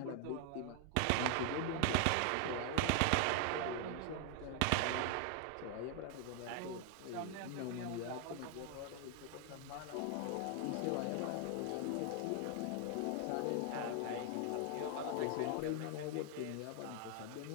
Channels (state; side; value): different; both; correlation 0.00